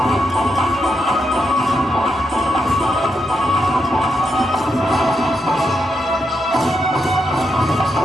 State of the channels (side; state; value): both; normal; correlation 0.83